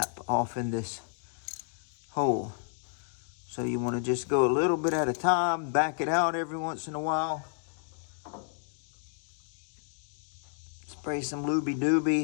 off in this hole. So you want to just go a little bit at a time, back it out every once in a while. Spray some Looby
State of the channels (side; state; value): right; silent; digital silence